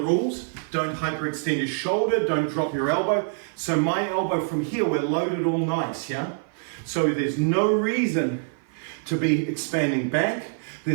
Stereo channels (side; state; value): left; silent; 55 dB below the other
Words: Don't hyperextend your shoulder, don't drop your elbow. So my elbow from here, we're loaded all nice, yeah? So there's no reason to be expanding back.